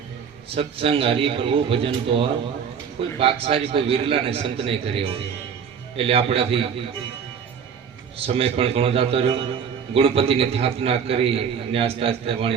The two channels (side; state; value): left; quieter; 7.1 dB